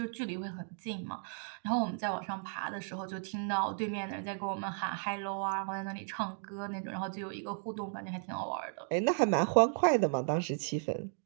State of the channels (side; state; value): left; silent; 55 dB below the other